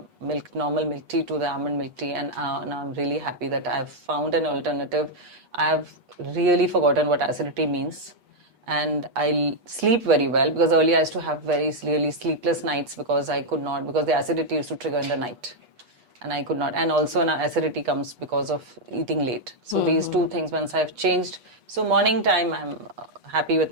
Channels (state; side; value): late; left; 8.3 ms